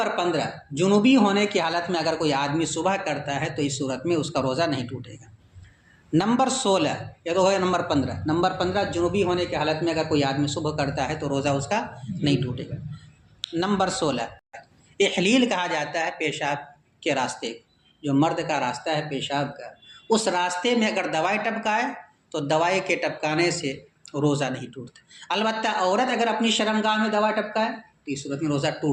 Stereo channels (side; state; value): both; identical; correlation 1.00